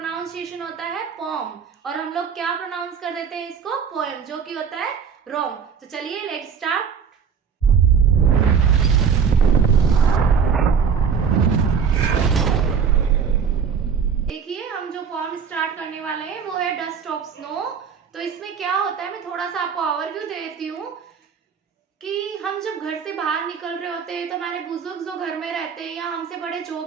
होता है पॉम और हम लोग क्या प्रोनाउंस कर देते हैं इसको पोएम, जो कि होता है रॉन्ग। तो चलिए लेट्स स्टार्ट। फॉर्म स्टार्ट करने वाले हैं वो है डस्ट ऑफ स्नो। तो इसमें क्या होता है, मैं थोड़ा सा आपको ओवरव्यू दे देती हूँ कि हम जब घर से बाहर निकल रहे होते हैं तो हमारे बुजुर्ग जो घर में रहते हैं या हमसे बड़े जो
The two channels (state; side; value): quieter; left; 6.7 dB